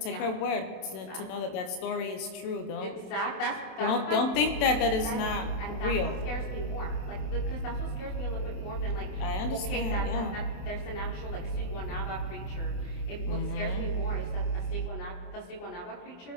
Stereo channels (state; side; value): late; right; 27 ms